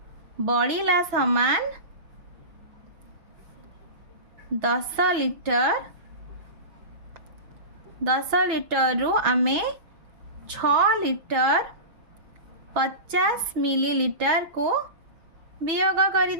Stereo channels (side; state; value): left; late; 6.1 ms